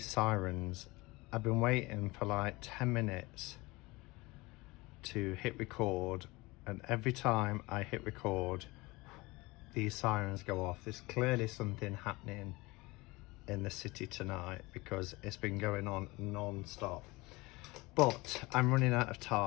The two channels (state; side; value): quieter; right; 22.6 dB